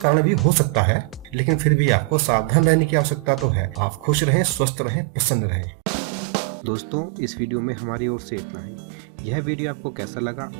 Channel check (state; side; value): drops out; left; at 4.7 s